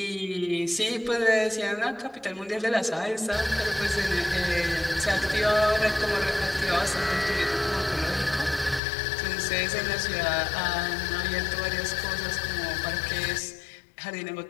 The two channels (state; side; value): drops out; right; at 8.8 s